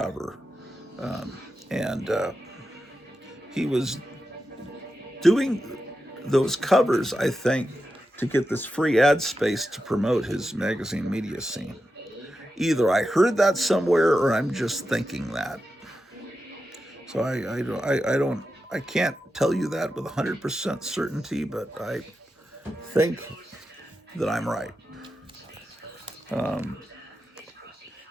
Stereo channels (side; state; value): both; normal; correlation 0.90